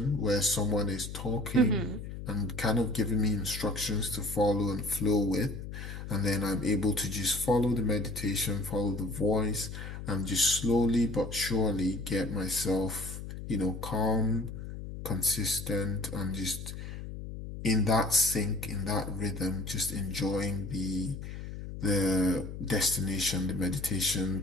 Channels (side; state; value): left; noise; hum, 9 dB below the sound